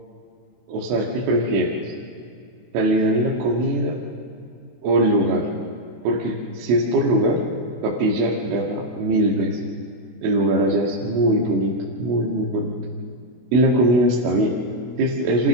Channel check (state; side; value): late; left; 24 ms